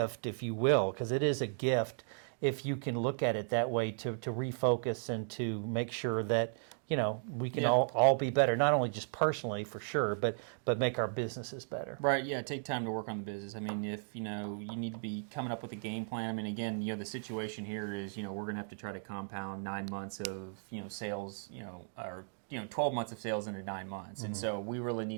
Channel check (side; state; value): left; silent; digital silence